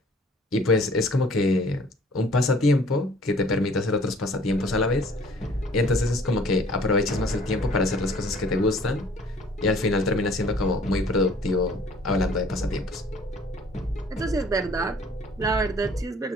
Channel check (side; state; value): both; normal; correlation 0.54